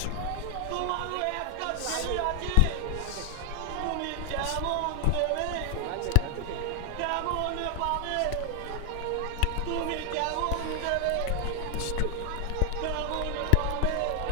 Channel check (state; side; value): different; both; correlation 0.00